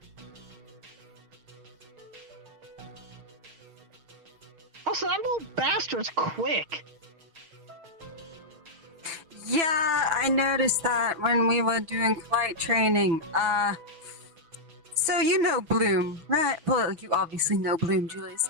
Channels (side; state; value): left; late; 6.1 ms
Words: Also, that little bastard's quick. Yeah, I noticed that when we were doing flight training. So you know Bloom, right? Well, you obviously know Bloom, Julius.